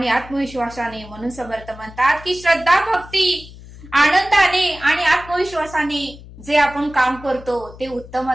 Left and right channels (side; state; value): left; noise; hum, 18 dB below the sound